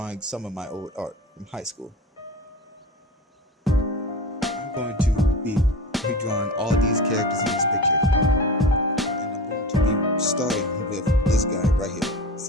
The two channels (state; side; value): normal; both; correlation 0.31